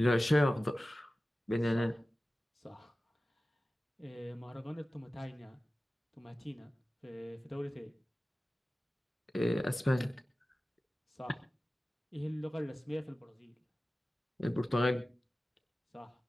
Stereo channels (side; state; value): both; normal; correlation 0.96